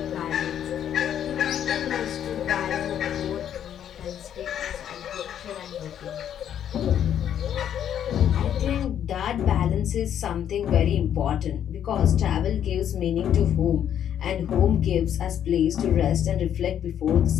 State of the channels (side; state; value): right; quieter; 9.8 dB